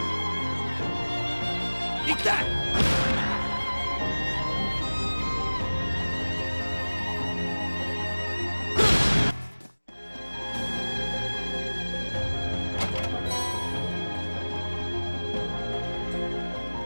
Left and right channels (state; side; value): inverted; both; correlation -1.00